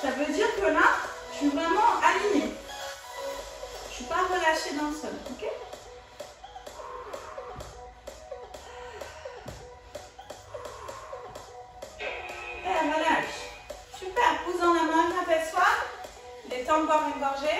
Ça veut dire que là, je suis vraiment alignée. Je ne suis pas relâchée dans le sol. Ok? Et relâche. Super. Pousse dans la main, apaise-toi. Détends boire une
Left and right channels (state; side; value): identical; both; correlation 1.00